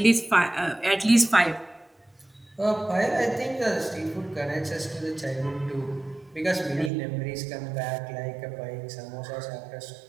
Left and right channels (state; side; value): drops out; left; at 6.9 s